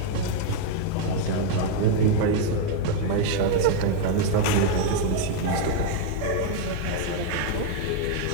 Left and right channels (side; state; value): both; different; correlation 0.01